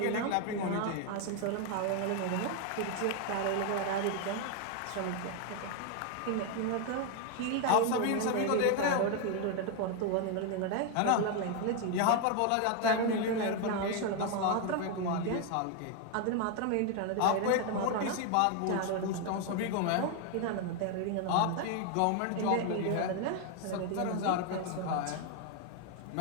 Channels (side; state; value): both; different; correlation 0.01